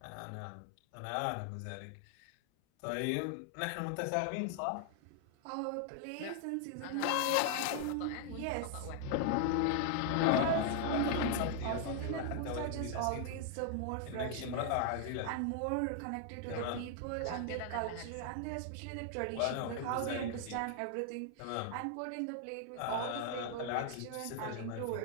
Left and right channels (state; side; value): different; both; correlation 0.00